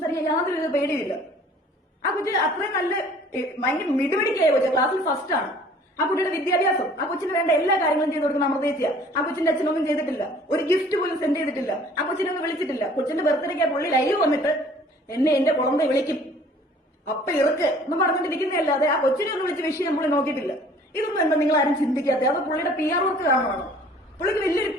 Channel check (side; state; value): both; normal; correlation 0.52